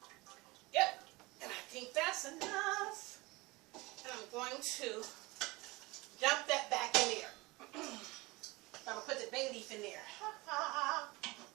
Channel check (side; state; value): left; quieter; 23.0 dB